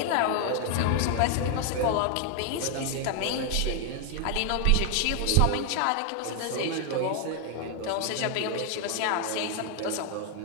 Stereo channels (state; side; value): different; both; correlation 0.00